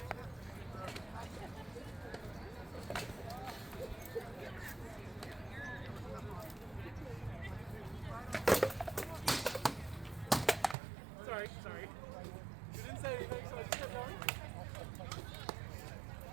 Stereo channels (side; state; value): left; drops out; at 10.8 s